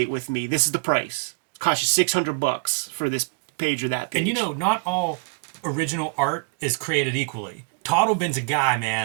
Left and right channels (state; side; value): quieter; left; 35.8 dB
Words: with me. This is the price. Cost you $600 for this page or that page. And you know, not all original art is created equally. Totlben's a guy,